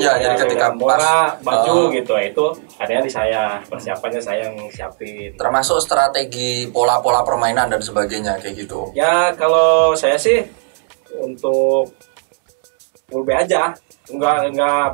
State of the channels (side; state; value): left; silent; 68 dB below the other